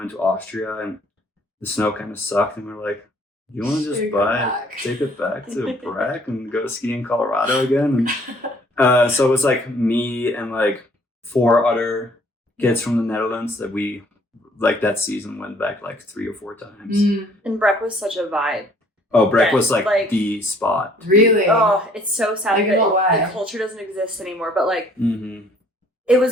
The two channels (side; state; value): both; normal; correlation 0.59